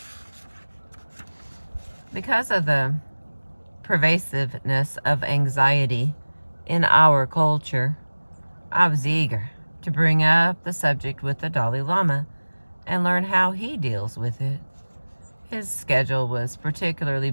Because of the pervasiveness of anxiety in our culture, I was eager to bring up the subject with the Dalai Lama and learn how he deals with it. His schedule was particularly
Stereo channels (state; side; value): inverted; both; correlation -1.00